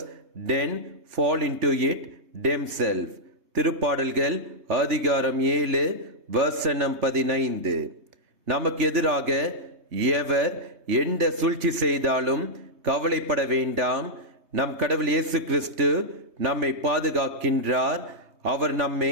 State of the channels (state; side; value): late; left; 3.2 ms